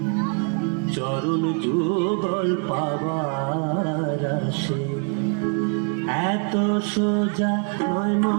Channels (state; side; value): quieter; left; 39.9 dB